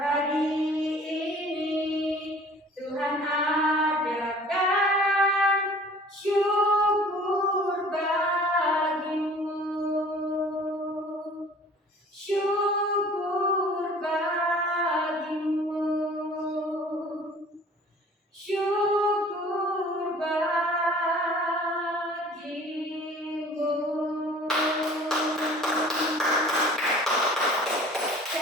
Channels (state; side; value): normal; both; correlation 0.49